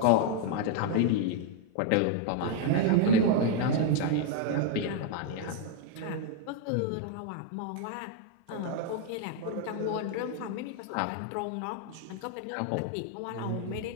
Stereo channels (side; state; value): both; different; correlation 0.00